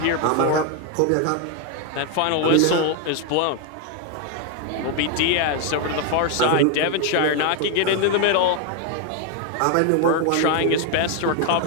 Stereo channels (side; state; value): both; different; correlation 0.01